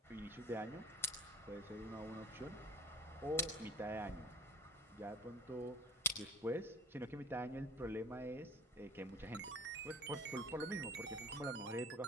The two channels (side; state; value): both; normal; correlation 0.45